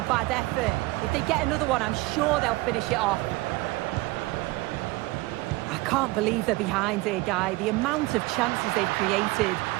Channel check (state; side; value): quieter; left; 21.2 dB